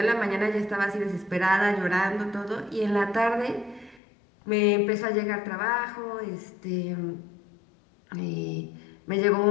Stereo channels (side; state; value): right; drops out; at 4.0 s